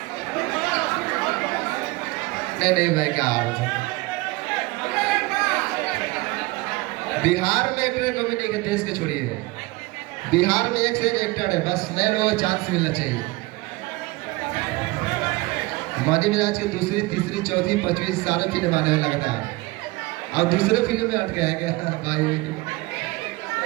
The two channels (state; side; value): quieter; left; 22.5 dB